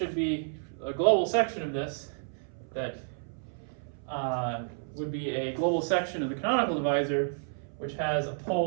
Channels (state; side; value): silent; left; 57 dB below the other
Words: be a global section of this that would be a global section of the canonical divisor, which has a